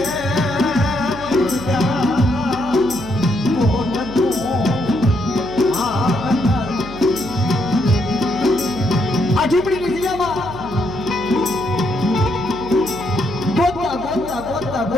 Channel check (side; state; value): right; noise; hum, 13 dB below the sound